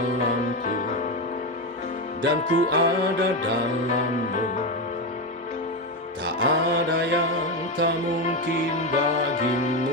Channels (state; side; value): normal; both; correlation 0.13